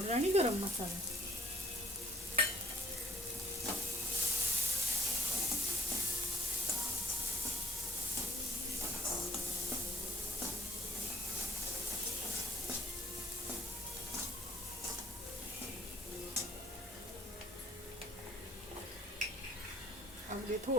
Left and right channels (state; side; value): normal; both; correlation 0.59